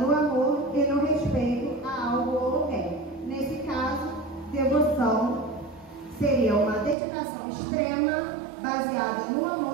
amor e no respeito a algo ou alguém. Nesse caso, devoção seria uma dedicação extrema baseada no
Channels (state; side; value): drops out; left; at 7.0 s